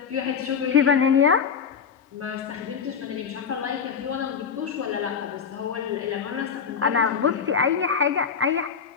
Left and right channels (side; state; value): right; quieter; 6.5 dB